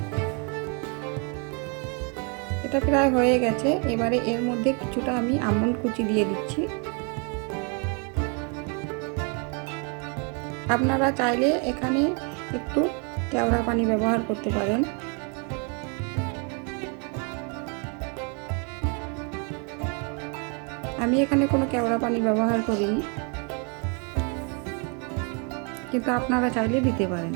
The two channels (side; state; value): left; quieter; 36.6 dB